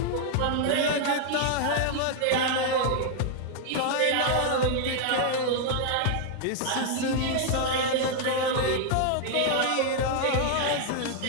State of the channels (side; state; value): both; different; correlation 0.00